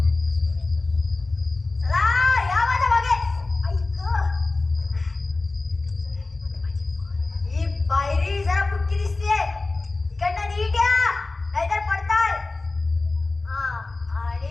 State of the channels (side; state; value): right; quieter; 3.3 dB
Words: चला या माझ्या मागे. ऐक ही पायरी जरा फुटकी दिसतीये. इकडनं नीट या नाहीतर पडताल. हा